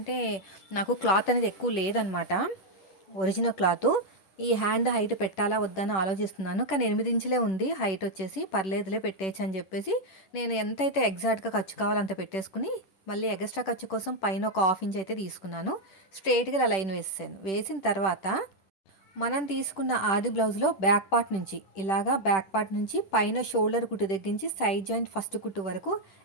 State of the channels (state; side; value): late; right; 10 ms